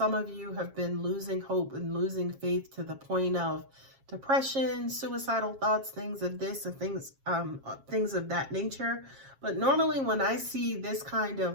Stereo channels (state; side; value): late; left; 7.4 ms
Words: of you have been losing hope and losing faith to the point of depression, suicidal thoughts, things of this and things of that nature. But normally when I see this kind